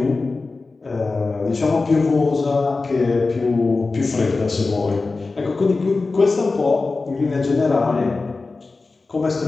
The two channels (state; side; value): quieter; right; 3.8 dB